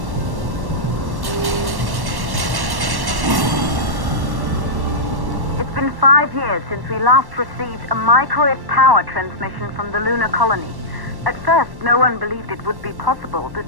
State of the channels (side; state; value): left; late; 1.1 ms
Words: It's been 5 years since we last received a microwave power transmission from the lunar colony. At first, no one believed it would be possible to